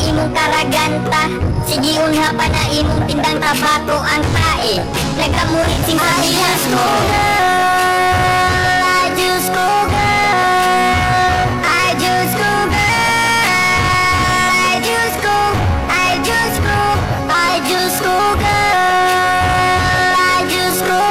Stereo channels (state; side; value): identical; both; correlation 1.00